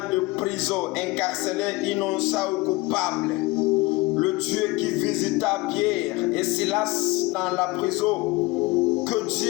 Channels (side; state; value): right; quieter; 22.0 dB